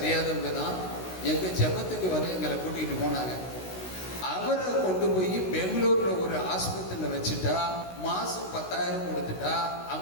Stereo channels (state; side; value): late; right; 16 ms